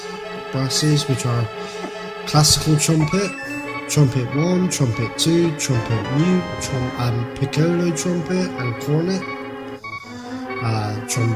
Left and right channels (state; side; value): identical; both; correlation 1.00